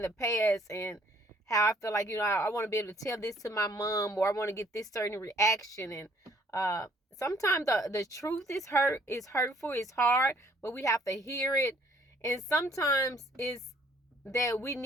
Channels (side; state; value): both; normal; correlation 0.61